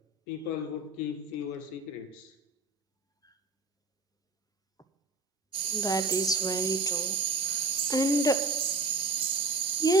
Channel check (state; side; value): quieter; left; 3.0 dB